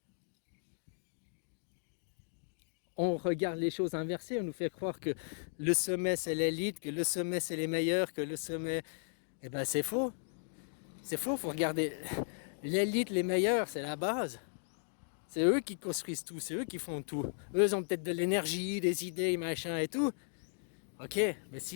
On regarde les choses inversées, on nous fait croire que le sommet, c'est l'élite, que le sommet, c'est les meilleurs, que le sommet... Eh ben, c'est faux. C'est faux, faut regarder. L'élite, les meilleurs, c'est la base. C'est eux qui construisent tout, c'est eux qui font tout. Eux, ils ont peut-être de l'énergie, des idées, machin et tout. Ok, mais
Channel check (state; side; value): silent; right; digital silence